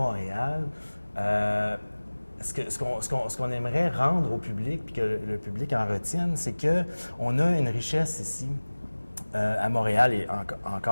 ce qu'on aimerait rendre au public, puis que le public en retienne, c'est qu'on a une richesse ici à Montréal et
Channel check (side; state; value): both; inverted; correlation -1.00